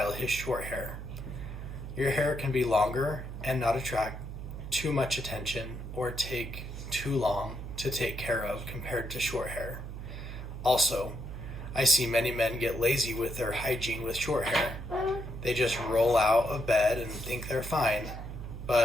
his short hair. Your hair can be longer and not attract too much attention or take too long to take care of compared to short hair. Also, I see many men get lazy with their hygiene with short hair. They just roll out of bed and think they're fine,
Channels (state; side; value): noise; right; hum, 8 dB below the sound